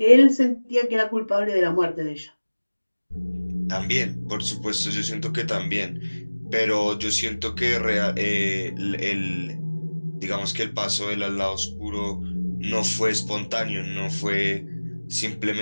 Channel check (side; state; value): both; inverted; correlation -1.00